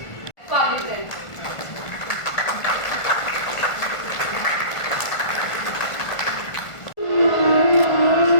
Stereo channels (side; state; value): right; late; 1.5 ms